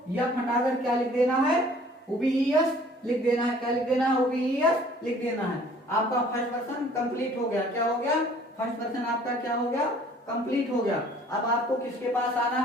यह हटाकर क्या लिख देना है, ओबीईएस लिख देना है। क्या लिख देना है? OBES लिख देना है। आपका फर्स्ट पर्सन कंप्लीट हो गया। क्या हो गया? फर्स्ट पर्सन आपका क्या हो गया? कंप्लीट हो गया। अब आपको किसके पास आना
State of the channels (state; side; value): normal; both; correlation 0.54